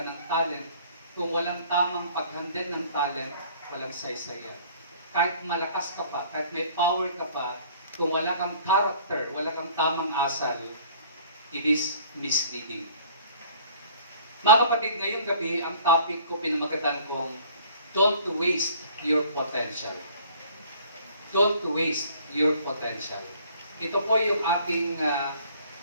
ng talent, kung walang tamang paghandle ng talent, walang saysayan. Kahit malakas ka pa, kahit may power ka pa, kung wala kang character, wala kang tamang asal, it is misleading. Mga kapatid, ngayong gabi, ang topic ko pinamagatan kong don't waste your potential. Don't waste your potential. Ito po yung ating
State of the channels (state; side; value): inverted; both; correlation -0.53